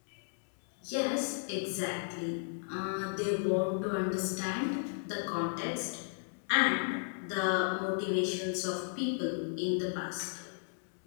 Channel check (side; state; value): right; silent; digital silence